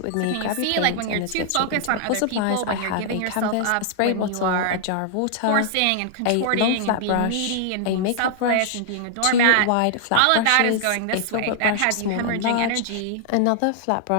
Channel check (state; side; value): different; both; correlation -0.01